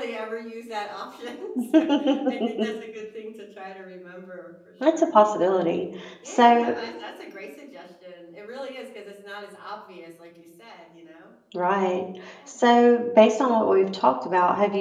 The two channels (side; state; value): both; identical; correlation 1.00